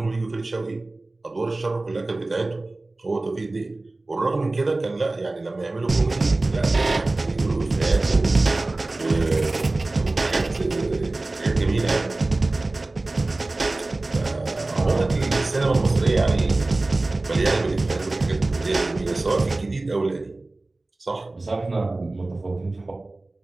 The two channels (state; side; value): quieter; left; 3.0 dB